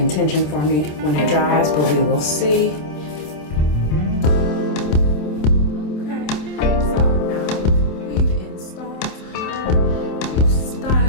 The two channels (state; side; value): late; right; 27 ms